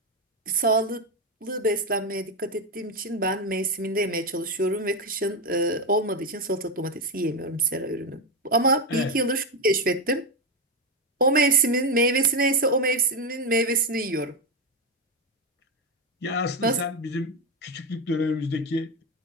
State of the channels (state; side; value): normal; both; correlation 0.10